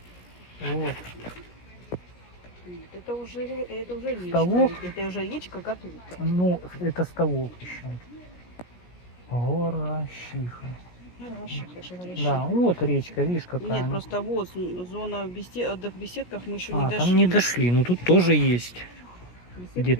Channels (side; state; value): right; late; 17 ms